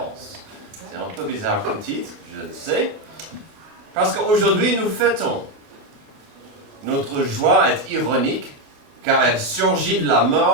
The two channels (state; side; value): late; left; 28 ms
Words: ». C'est un peu bizarre comme titre, je le sais, parce qu'aujourd'hui, nous fêtons. Notre joie est ironique, car elle surgit de la